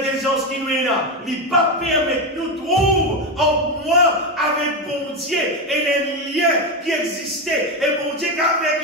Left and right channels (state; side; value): normal; both; correlation 0.12